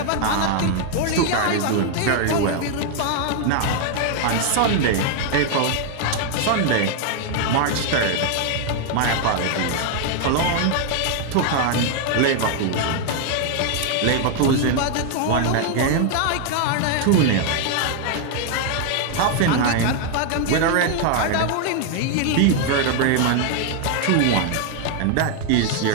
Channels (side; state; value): both; different; correlation 0.00